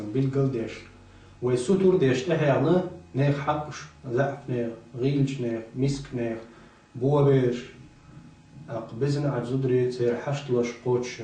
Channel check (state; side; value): identical; both; correlation 1.00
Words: بالقل ديش ويسوتور ديش تحيانا نيخ حقش زعف نيخ غيلش نيخ مسك نيخ بوابيش أقبزن عجزودري تسير حشت لش قوتش